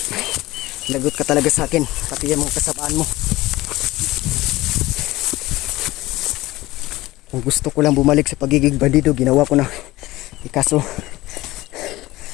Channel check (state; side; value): quieter; right; 18.3 dB